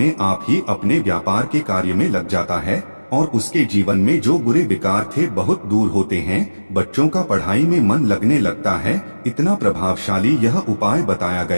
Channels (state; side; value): inverted; both; correlation -1.00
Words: आप ही अपने व्यापार के कार्य में लग जाता है और उसके जीवन में जो बुरे विकार थे बहुत दूर होते हैं। बच्चों का पढ़ाई में मन लगने लगता है। इतना प्रभावशाली यह उपाय बताया